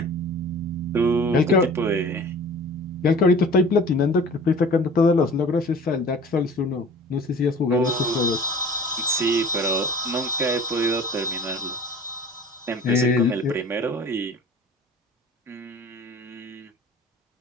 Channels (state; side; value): normal; both; correlation 0.44